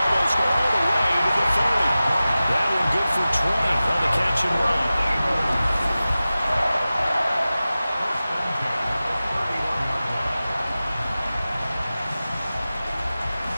almost all the way to the 30. That one good for 20 on the catch and run.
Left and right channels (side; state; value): both; inverted; correlation -0.96